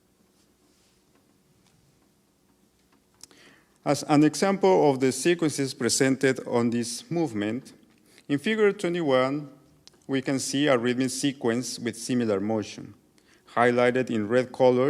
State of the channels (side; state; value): both; identical; correlation 1.00